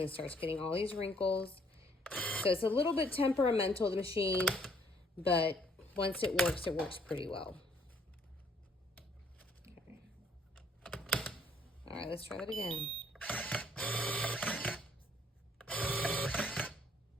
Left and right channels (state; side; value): normal; both; correlation 0.65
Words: starts getting all these wrinkles. So it's a little bit temperamental, the machine, but once it works pretty well. right, let's try that again.